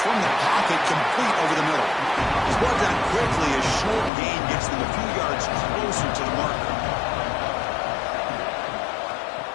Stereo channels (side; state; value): right; drops out; at 4.1 s